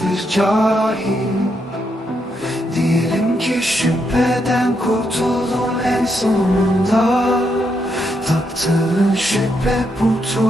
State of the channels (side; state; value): both; normal; correlation 0.79